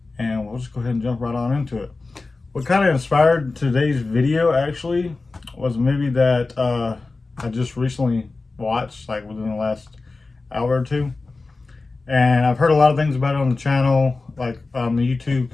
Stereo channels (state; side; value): quieter; right; 3.6 dB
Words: And we'll just go ahead and jump right on into it. What kind of inspired today's video actually was a movie that I just recently watched, like within the last hour or two. And I've heard a lot of things about it on the channel, like the YouTube